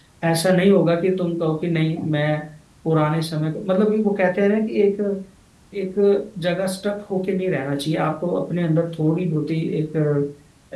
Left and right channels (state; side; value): identical; both; correlation 1.00